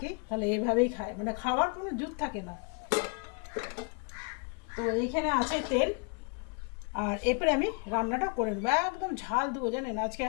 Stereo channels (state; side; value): quieter; right; 35.2 dB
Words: তাহলে এভাবেই খাই, মানে খাওয়ার কোনো জুত থাকে না। তো এইখানে আছে তেল, আর এরপরে আমি রান্নাটা করে নেবো। একদম ঝাল দেবো জানেন, আজকে